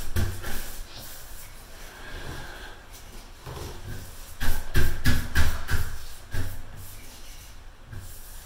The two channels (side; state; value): both; identical; correlation 1.00